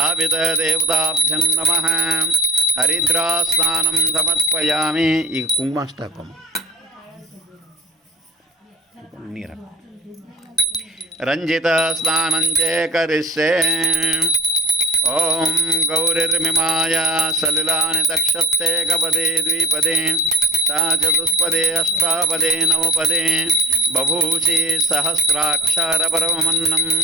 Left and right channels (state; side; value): normal; both; correlation 0.44